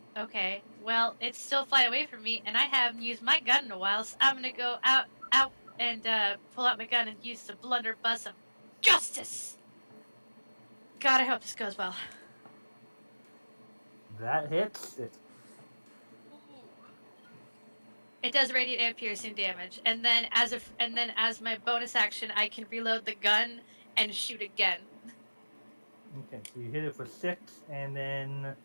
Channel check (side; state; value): both; inverted; correlation -1.00